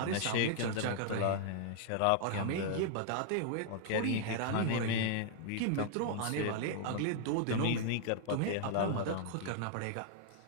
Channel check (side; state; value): both; different; correlation 0.00